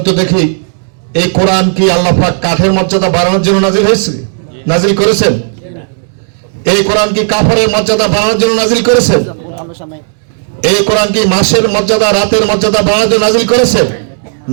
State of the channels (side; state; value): left; silent; digital silence